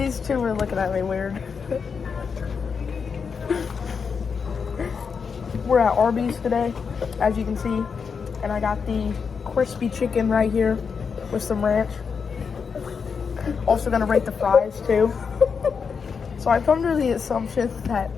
two were looking at me weird. We're at Arby's today, as you can see, and I got the crispy chicken right here with some ranch. Also gonna rate the fries too. So I've come to the assumption that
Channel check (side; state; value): right; quieter; 5.9 dB